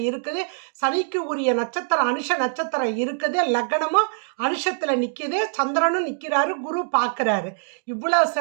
இருக்குது. சனிக்கு உரிய நட்சத்திரம் அனுஷ நட்சத்திரம் இருக்குது. லக்னமும் அனுஷத்தில் நிற்கிது. சந்திரனும் நிற்கிறாரு. குரு பார்க்குறாரு. இவ்வளோ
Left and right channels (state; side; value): silent; left; digital silence